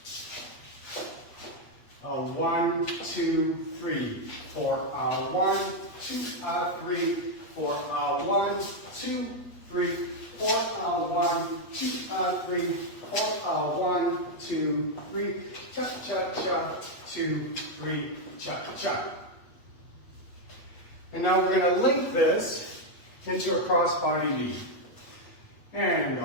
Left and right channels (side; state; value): right; late; 8.2 ms